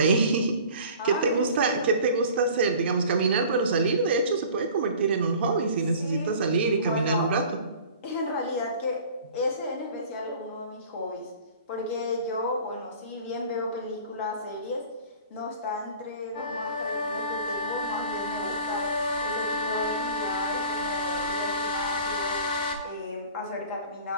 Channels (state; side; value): inverted; both; correlation -0.45